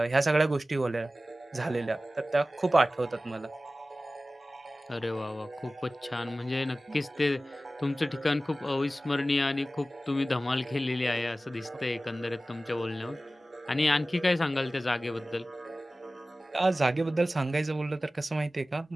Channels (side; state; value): both; normal; correlation 0.96